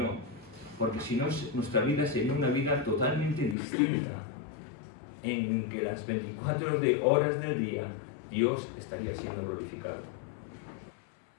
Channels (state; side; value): drops out; right; at 3.6 s